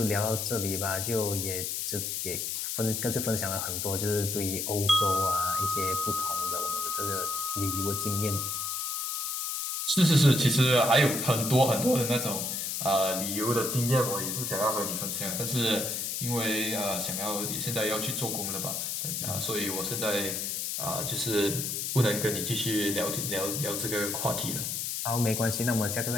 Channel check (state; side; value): noise; left; hiss, 2 dB below the sound